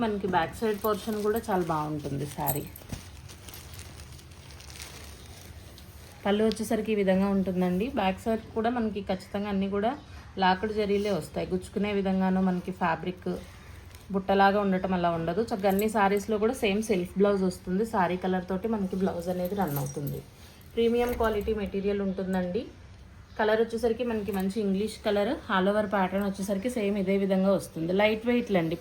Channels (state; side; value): identical; both; correlation 1.00